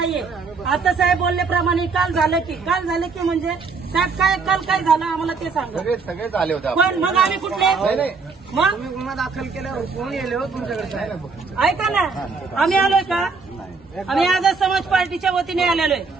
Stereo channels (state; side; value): quieter; left; 4.6 dB